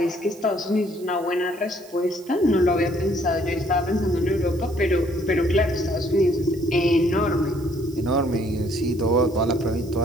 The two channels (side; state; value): right; noise; hiss, 24 dB below the sound